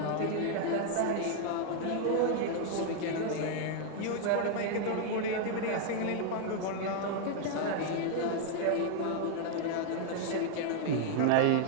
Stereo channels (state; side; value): different; both; correlation 0.00